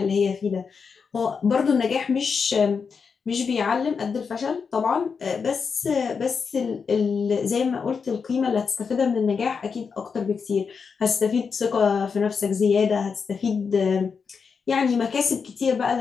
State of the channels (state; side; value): quieter; right; 5.7 dB